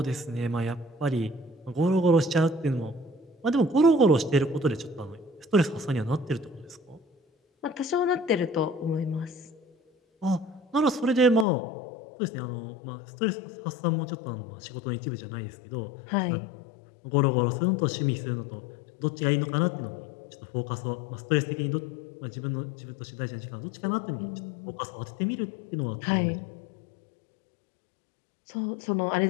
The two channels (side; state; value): right; drops out; at 11.5 s